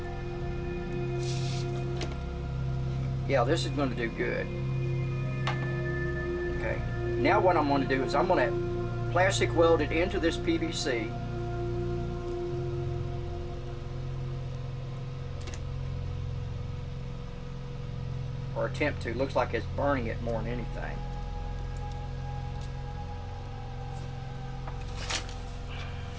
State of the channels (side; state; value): both; identical; correlation 1.00